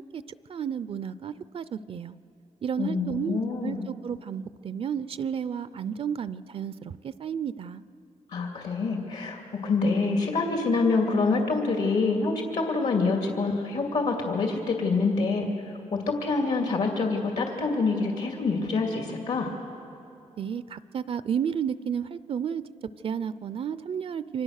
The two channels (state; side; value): normal; both; correlation 0.66